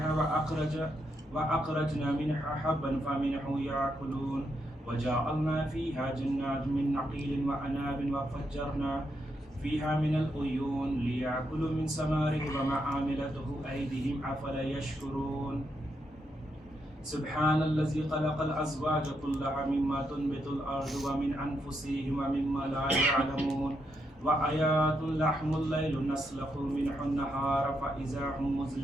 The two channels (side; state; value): both; normal; correlation 0.80